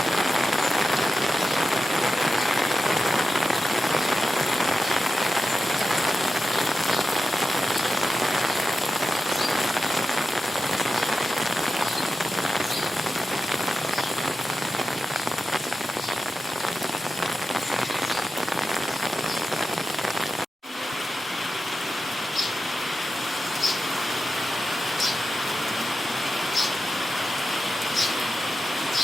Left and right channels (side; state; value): both; normal; correlation 0.91